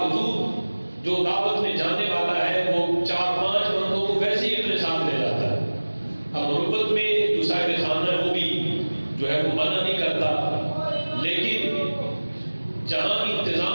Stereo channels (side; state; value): both; inverted; correlation -1.00